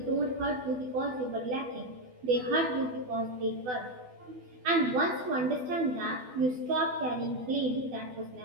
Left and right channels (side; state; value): left; late; 12 ms